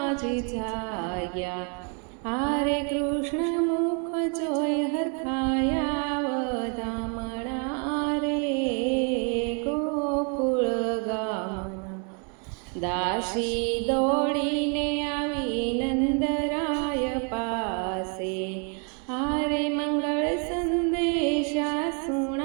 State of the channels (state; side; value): quieter; left; 38.2 dB